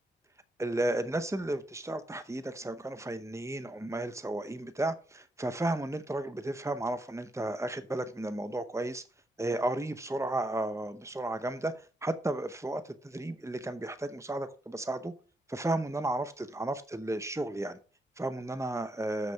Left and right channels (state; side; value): normal; both; correlation 0.80